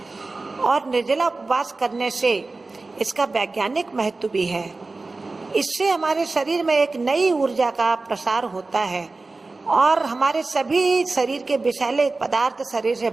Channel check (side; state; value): left; quieter; 3.5 dB